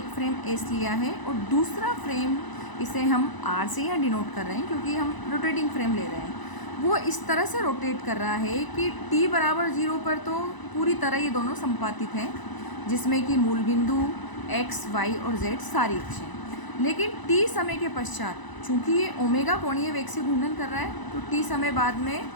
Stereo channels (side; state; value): right; late; 1.0 ms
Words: फ्रेम एस लिया है और दूसरा फ्रेम इसे हम आर से यहाँ डिनोट कर रहे हैं क्योंकि हम रोटेटिंग फ्रेम ले रहे हैं. वो इस तरह से रोटेट कर रहा है कि t बराबर 0 पर तो पूरी तरह ये दोनों संपातित हैं, जिसमें कि मूल बिंदु x, y और z सारी अक्षें. लेकिन t समय के पश्चात चूँकि ये ओमेगा कोणीय वेग से घूर्णन कर रहा है तो t समय बाद में